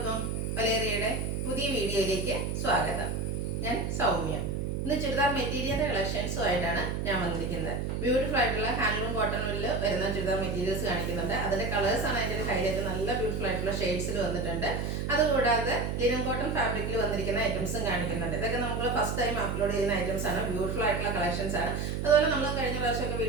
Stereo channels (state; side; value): noise; right; hum, 2 dB below the sound